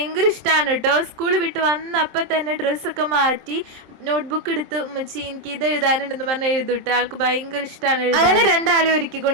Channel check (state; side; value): late; left; 26 ms